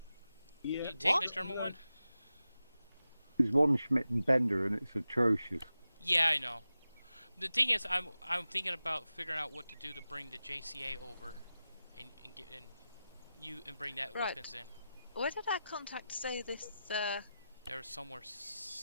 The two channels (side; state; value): both; inverted; correlation -0.93